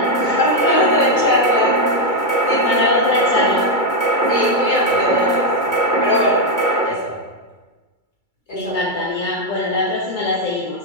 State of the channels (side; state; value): right; late; 2.3 ms